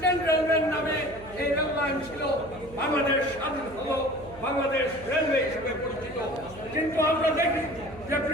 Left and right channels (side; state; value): right; noise; hum, 18 dB below the sound